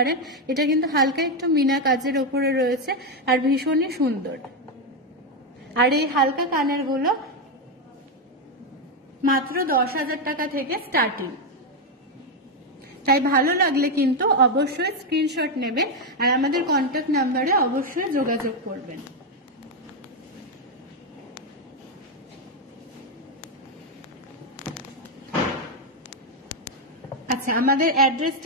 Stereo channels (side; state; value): both; normal; correlation 0.05